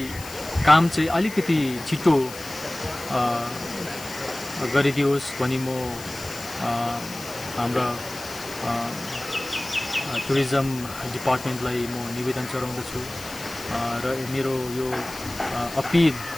काम चाहिँ अलिकति छिटो गरिदियोस् भनी म हाम्रा टुरिज्म डिपार्टमेन्टलाई म निवेदन चढाउँदछु र मेरो यो अपिल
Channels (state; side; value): noise; left; hiss, 14 dB below the sound